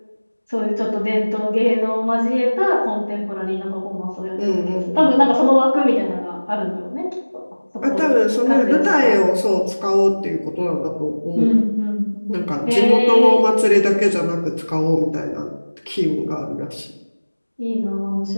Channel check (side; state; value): both; inverted; correlation -1.00